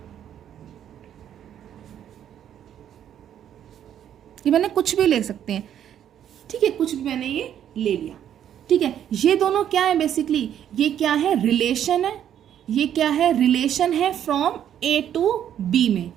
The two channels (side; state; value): left; quieter; 10.0 dB